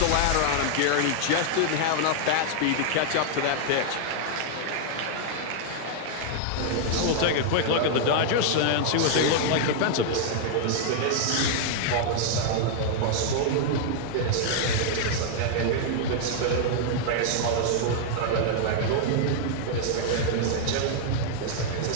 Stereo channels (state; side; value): different; both; correlation -0.01